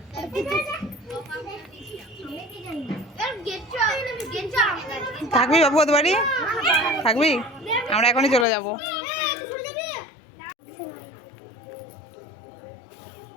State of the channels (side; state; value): right; drops out; at 8.5 s